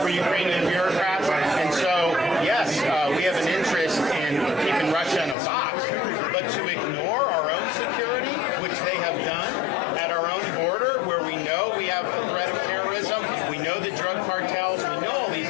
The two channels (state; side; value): drops out; right; at 5.4 s